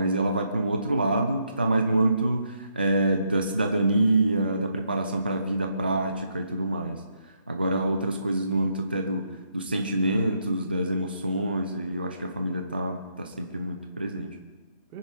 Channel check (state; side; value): inverted; both; correlation -0.76